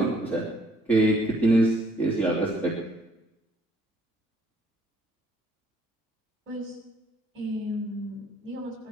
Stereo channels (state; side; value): normal; both; correlation 0.64